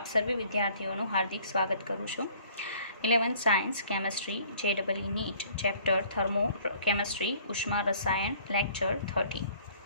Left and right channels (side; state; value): both; inverted; correlation -0.56